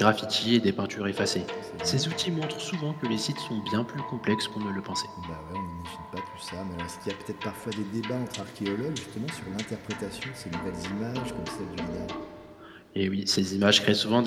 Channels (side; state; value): both; identical; correlation 1.00